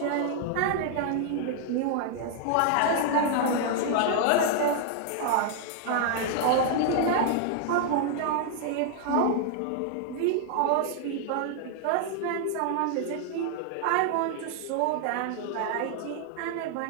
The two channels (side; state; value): both; different; correlation 0.00